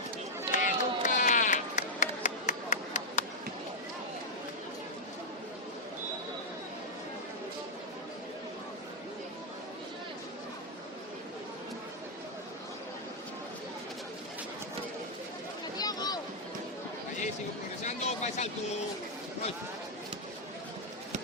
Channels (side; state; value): both; normal; correlation -0.03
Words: Luca. Allí sigo progresando, fa el salto. Roy.